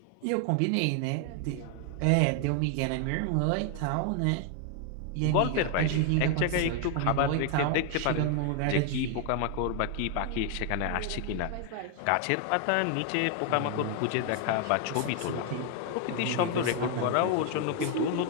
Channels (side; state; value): both; different; correlation 0.00